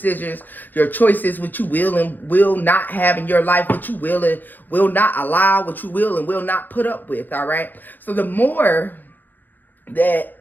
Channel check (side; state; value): right; late; 0.087 ms